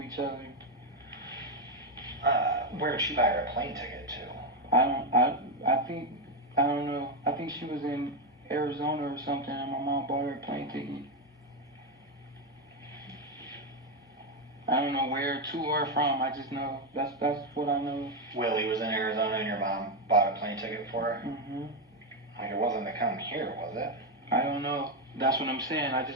each other. Where did she buy her a plane ticket to? I don't know. I think she was in Arizona or something, and my mom bought her a plane ticket. I don't know where to or from. I just know that's what I know. Willie was in Arizona and your mom bought a plane ticket for her? Mm-hmm. Like, it wasn't to come here, was it? I don't know. That's what I'm saying. I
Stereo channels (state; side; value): normal; both; correlation 0.06